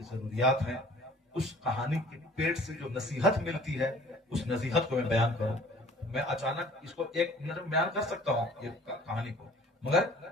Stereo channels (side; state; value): both; normal; correlation 0.51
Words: ضروریات ہیں، اس کہانی کے پیٹ سے جو نصیحت ملتی ہے، اس نصیحت کو میں بیان کروں. میں اچانک اس کو ایک منٹ میں بیان کر سکتا ہوں یہ کہانی کو، مگر